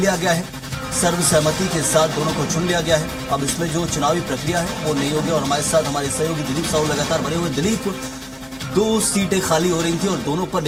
गया है। सर्वसहमति के साथ दोनों को चुन लिया गया है। अब इसमें जो चुनावी प्रक्रिया है वो नहीं होगी। और हमारे साथ हमारे सहयोगी दिलीप साहू लगातार बने हुए। दिलीप, 2 सीटें खाली हो रही थी और दोनों पर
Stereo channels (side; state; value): both; identical; correlation 1.00